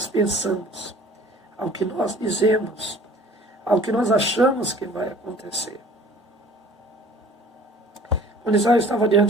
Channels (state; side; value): normal; both; correlation 0.49